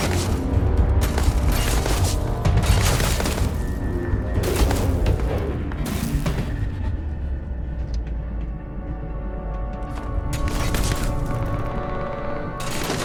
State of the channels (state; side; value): identical; both; correlation 1.00